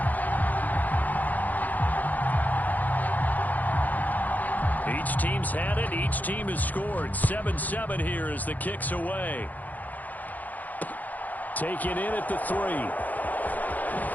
Each team's had it. Each team has scored. 7-7 here as the kick's away. Taken in at the 3.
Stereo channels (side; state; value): right; late; 0.081 ms